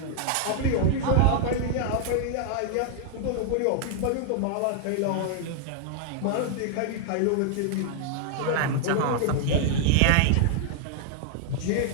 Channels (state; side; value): different; both; correlation 0.00